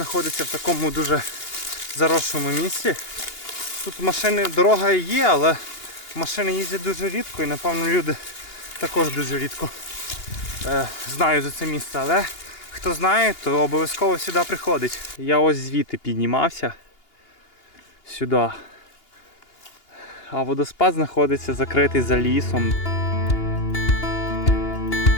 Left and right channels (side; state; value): right; late; 2.8 ms